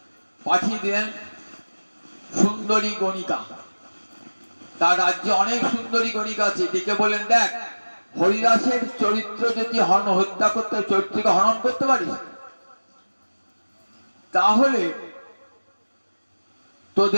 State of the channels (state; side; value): inverted; both; correlation -1.00